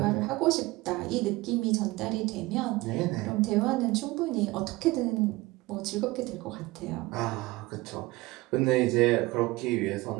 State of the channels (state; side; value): quieter; left; 20.9 dB